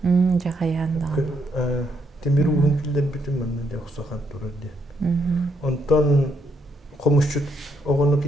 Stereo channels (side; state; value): both; normal; correlation 0.75